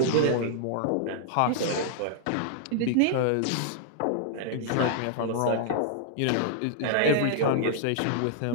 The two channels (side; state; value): both; different; correlation -0.01